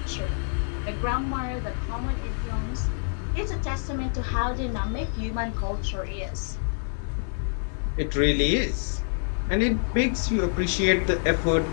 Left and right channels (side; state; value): right; silent; digital silence